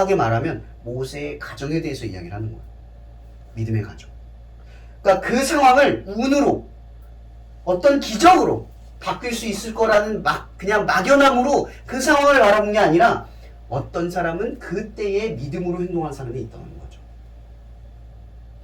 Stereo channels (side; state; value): both; identical; correlation 1.00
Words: 말하면 모세의 가정에 대해서 이야기를 하는 거예요. 믿음의 가정. 그러니까 그 상황을 운으로 어떤 기적으로 바뀔 수 있을 거라는 그냥 막연함으로 그 상황을 바라본 게 아니라 어떤 사람은 그때에 믿음으로 행동한 사람이 있다는 거죠.